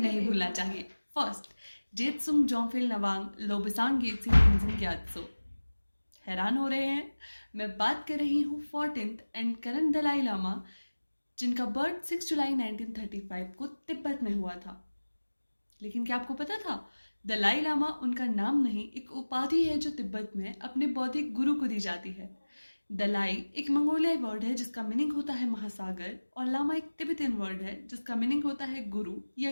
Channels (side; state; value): both; inverted; correlation -1.00